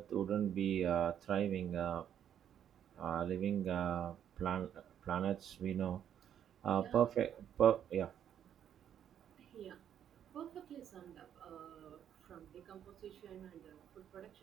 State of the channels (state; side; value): quieter; left; 9.6 dB